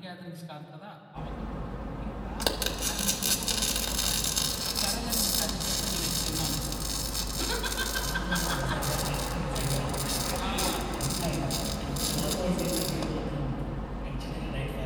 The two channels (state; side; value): identical; both; correlation 1.00